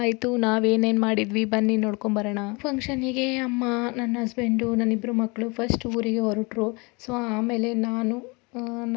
ಆಯಿತು, ನಾವೇನೇನು ಮಾಡಿದ್ವಿ, ಬನ್ನಿ ನೋಡ್ಕೊಂಬರೋಣ. ಫಂಕ್ಷನಿಗೆ ಅಮ್ಮ, ನನ್ನ ಹಸ್ಬೆಂಡು, ನನ್ನಿಬ್ಬರು ಮಕ್ಕಳು ಫಸ್ಟ್ ಊರಿಗೆ ಹೊರಟರು. ಸೊ ಆಮೇಲೆ ನಾನು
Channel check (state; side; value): quieter; right; 28.2 dB